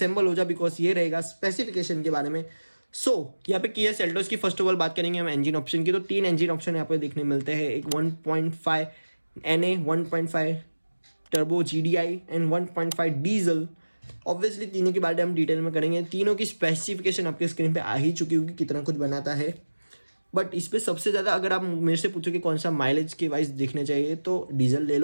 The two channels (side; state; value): both; inverted; correlation -1.00